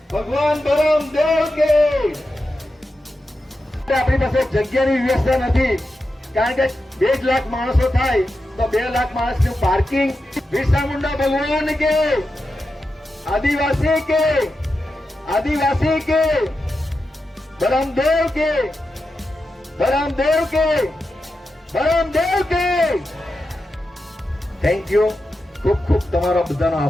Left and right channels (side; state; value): both; normal; correlation 0.89